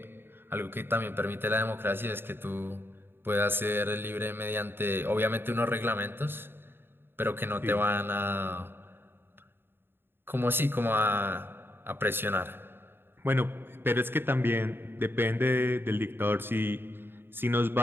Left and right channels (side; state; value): left; late; 0.10 ms